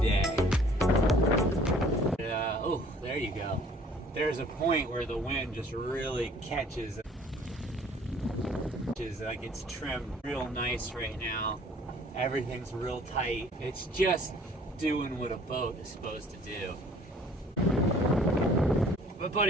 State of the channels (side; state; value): both; normal; correlation 0.54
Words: Oh, there you go. There's a point where the wind just really catches. Like it's trimmed real nice right now. Everything's real tight. It's just doing what a boat is supposed to do. My